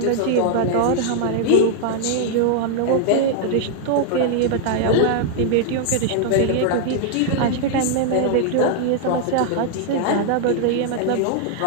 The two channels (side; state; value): both; different; correlation 0.00